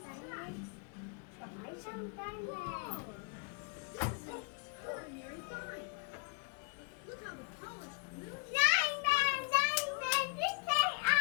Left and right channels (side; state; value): right; quieter; 38.2 dB